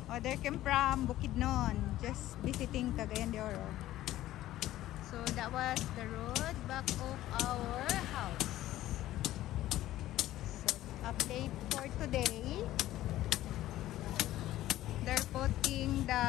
Oh, they came from Bukidnon, just visiting Cagayan de Oro. So that was the road back of our house. So update for today. They're putting the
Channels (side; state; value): right; quieter; 14.6 dB